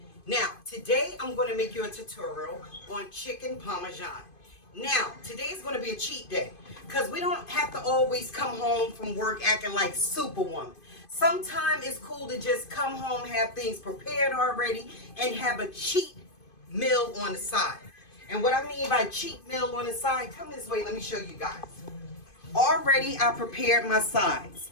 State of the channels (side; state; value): right; late; 2.5 ms